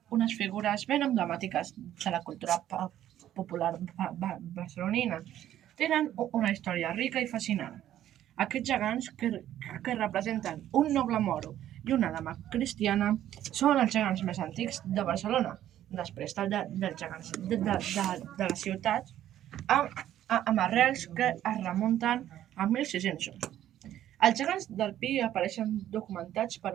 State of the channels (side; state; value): left; quieter; 12.0 dB